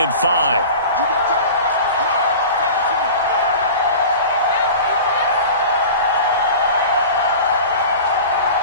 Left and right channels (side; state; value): both; inverted; correlation -0.36